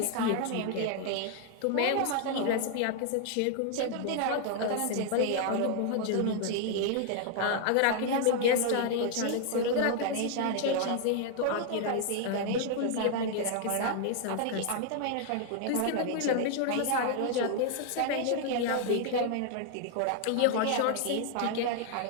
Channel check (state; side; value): different; both; correlation 0.00